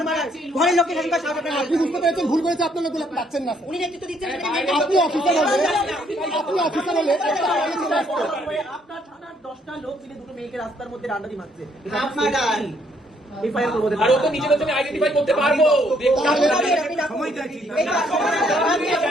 মারার, ঘরের লোককে শাসন করার সাহস আপনার। আপনি বুঝতে পেরেছেন ভুল করেছে, আপনার লোকগুলো পাচ্ছেন না। উনি নেতৃত্ব দিচ্ছেন, আপনি অফিসার হলে আপনার থানার 10টা লোক মিলে দুটো মেয়েকে রাস্তার মধ্যে ডান্ডানি মারছে।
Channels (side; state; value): both; normal; correlation 0.68